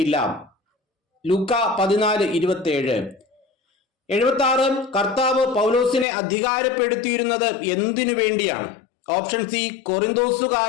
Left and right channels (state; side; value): drops out; right; at 6.1 s